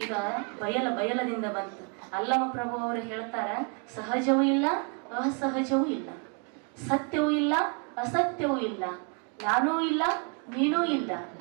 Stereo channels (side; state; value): left; quieter; 37.7 dB